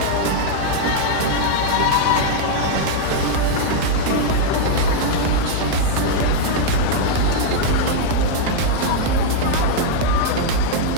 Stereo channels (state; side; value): different; both; correlation -0.01